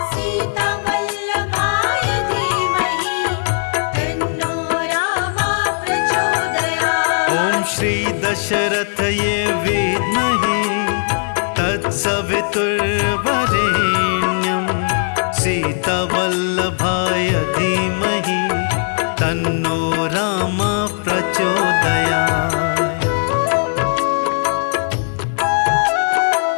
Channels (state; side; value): silent; right; 62 dB below the other